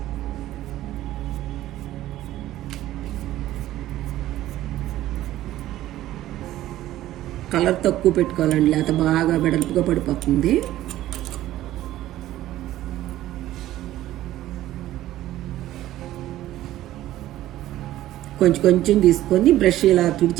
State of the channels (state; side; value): quieter; left; 14.4 dB